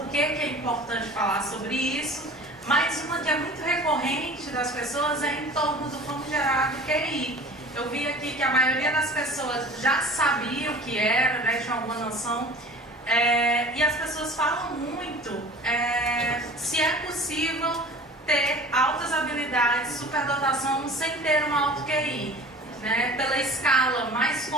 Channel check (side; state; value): both; normal; correlation 0.41